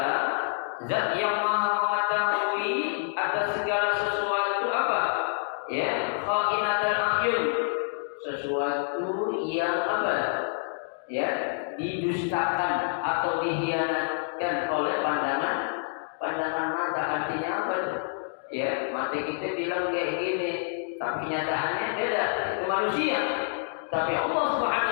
zat yang maha mengetahui atas segala sesuatu apa? Ya, kha'inatal a'yun. Sesuatu yang apa? Ya, didustakan atau dikhianatkan oleh pandangan mata. Artinya apa itu? Ya, mata kita bilang kayak gini, tapi kenyataannya beda. Itu manusia. Tapi Allah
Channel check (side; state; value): right; silent; digital silence